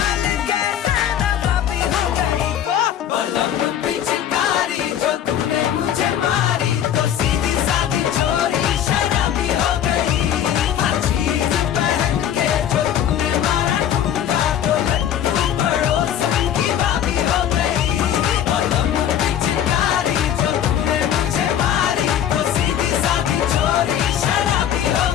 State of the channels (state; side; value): quieter; right; 10.1 dB